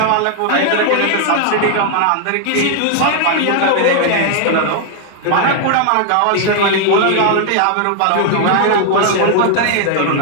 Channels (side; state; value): both; different; correlation 0.00